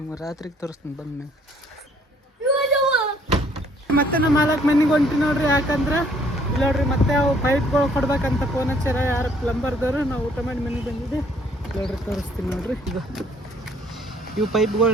ರಾತ್ರಿಗೆ ತೋರಿಸ್ತೀನಿ ಬಂದ್ಮೇಲೆ. ಮತ್ತೆ ನಮ್ಮ ಮಾಲಕ್ ಮನೆಗೆ ಹೊಂಟಿ ನೋಡ್ರಿ. ಯಾಕಂದ್ರೆ ಇಲ್ಲಿ ನೋಡ್ರಿ ಮತ್ತೆ ಅವು ಪೈಪ್ಗಳು ಕೊಡ್ಬೇಕಂತ ಫೋನ್ ಹಚ್ಚಾರ ಯಾರು ಪ್ಲಂಬರ್ದವರು. ನಾವು ಊಟ ಮಾಡಿ ಮನೆಗೆ ಬಂದಿದ್ದೆ ನೋಡ್ರಿ. ತೋರಿಸ್ತೀನಿ ನೋಡ್ರಿ. ಈಗ ಇವು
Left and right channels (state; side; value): normal; both; correlation 0.62